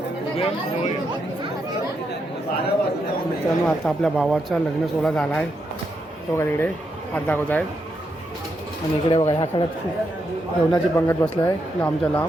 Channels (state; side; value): normal; both; correlation 0.81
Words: मित्रांनो, आता आपल्या भावाचा लग्न सोहळा झाला आहे. तो बघा तिकडे हात दाखवत आहेत आणि इकडे बघा ह्या काळात खूप जेवणाची पंगत बसलं आहे लांबच्या